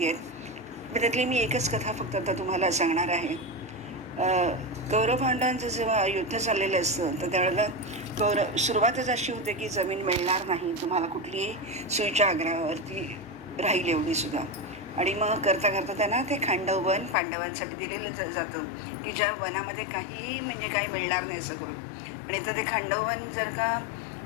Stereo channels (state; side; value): drops out; right; at 17.2 s